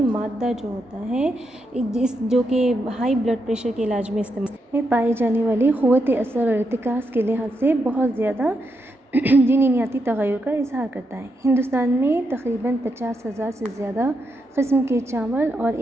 مادہ جو ہوتا ہے جو کہ ہائی بلڈ پریشر کے علاج میں استعمال میں پائی جانے والی قوت اثر اور ارتکاز کے لحاظ سے بہت زیادہ جینیاتی تغیر کا اظہار کرتا ہے. ہندوستان میں تقریباً 50,000 سے زیادہ قسم کے چاول اور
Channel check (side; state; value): both; normal; correlation 0.83